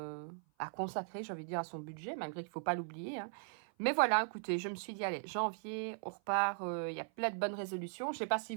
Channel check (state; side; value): silent; left; 52 dB below the other